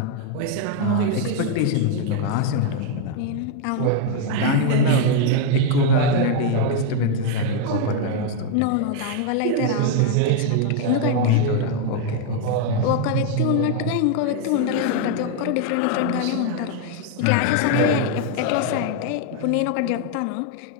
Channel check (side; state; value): both; different; correlation 0.00